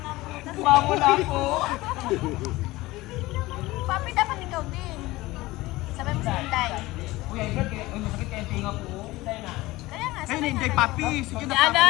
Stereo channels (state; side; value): quieter; right; 19.3 dB